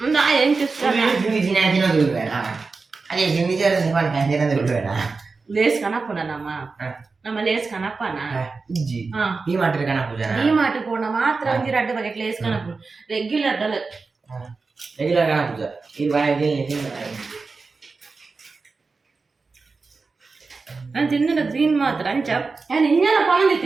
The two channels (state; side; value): quieter; left; 4.2 dB